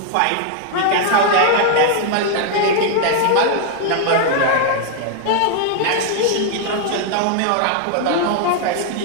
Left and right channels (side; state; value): both; different; correlation 0.00